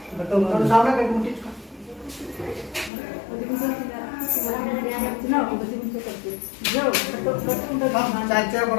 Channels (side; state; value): right; drops out; at 2.9 s